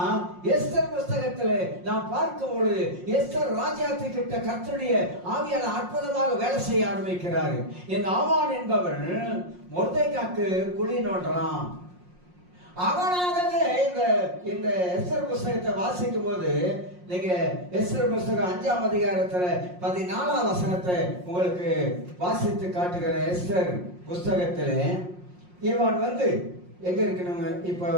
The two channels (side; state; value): left; late; 5.6 ms